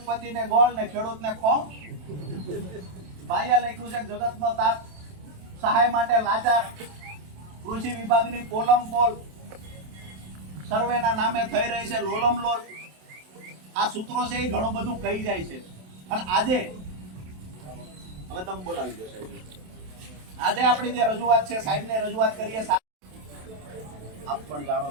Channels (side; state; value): left; late; 27 ms